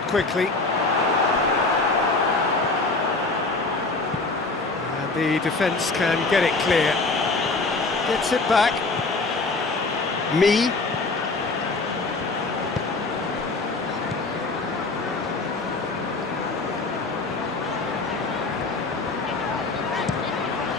quickly, and the defence can get it clear. Gets it back. Me.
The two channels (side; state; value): right; quieter; 3.6 dB